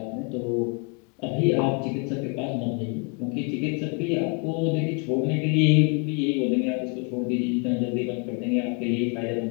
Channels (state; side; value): quieter; right; 35.4 dB